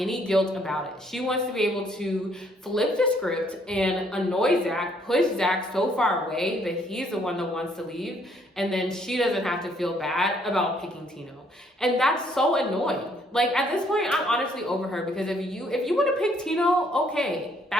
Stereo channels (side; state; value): both; normal; correlation 0.66